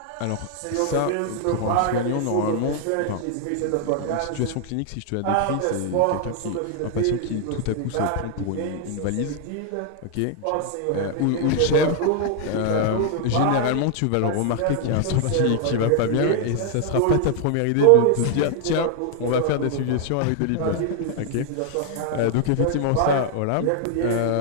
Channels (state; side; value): different; both; correlation 0.00